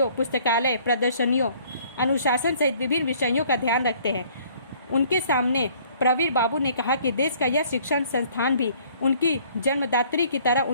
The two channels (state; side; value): inverted; both; correlation -0.58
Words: पुस्तकालय प्रदर्शनियों, अनुशासन सहित विभिन्न विषयों का ध्यान रखते हैं। उनके सामने प्रवीर बाबू ने कहा कि देश का यह शिक्षण संस्थान भी उनकी जन्मदात्री की तरह